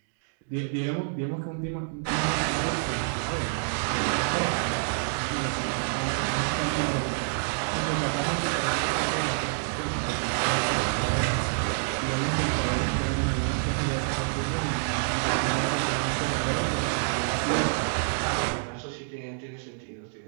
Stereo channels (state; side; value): silent; left; digital silence